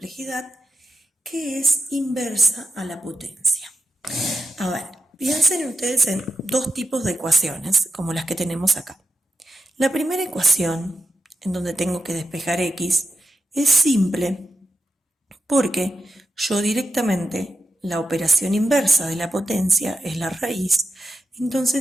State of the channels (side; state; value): both; normal; correlation 0.87